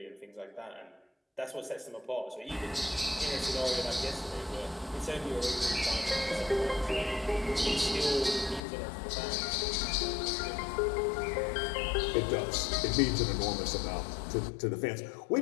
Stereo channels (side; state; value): right; drops out; at 8.6 s